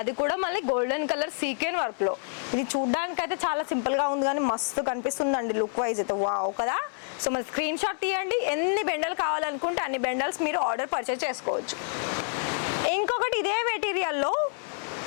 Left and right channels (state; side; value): silent; right; 60 dB below the other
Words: కూడా మళ్ళీ గోల్డెన్ కలర్ సీక్వెన్ వర్క్లో. ఇది చూడ్డానికి అయితే చాలా సింపుల్గా ఉంది కానీ మస్తు కనిపిస్తుందండి లుక్ వైజ్ అయితే. వావ్ కదా. సో మరి స్క్రీన్ షాట్ తీయండి. ఎన్ని బెండలు కావాలనుకుంటే అన్ని బెండల్స్ మీరు ఆర్డర్ పర్చేస్ చేసుకోవచ్చు. ఇంకొకటి ఇదే మెటీరియల్లో